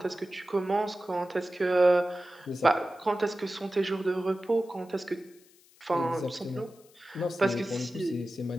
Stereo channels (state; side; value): noise; left; hiss, 28 dB below the sound